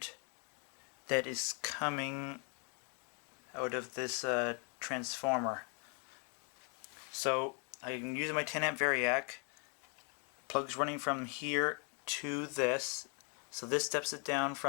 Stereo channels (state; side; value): quieter; right; 39.0 dB